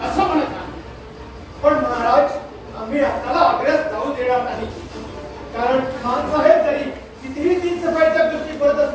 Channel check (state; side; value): identical; both; correlation 1.00